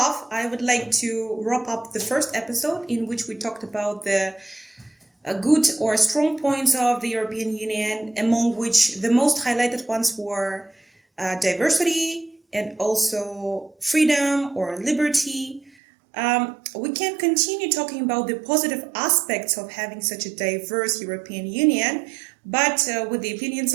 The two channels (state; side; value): drops out; left; at 15.7 s